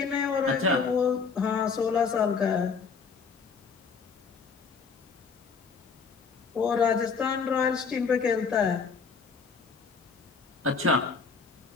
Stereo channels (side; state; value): right; quieter; 5.3 dB